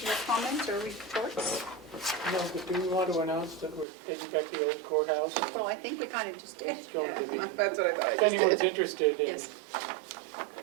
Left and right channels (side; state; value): left; drops out; at 3.9 s